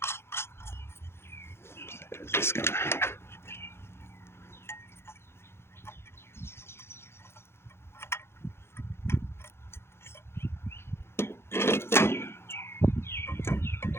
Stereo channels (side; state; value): right; late; 0.12 ms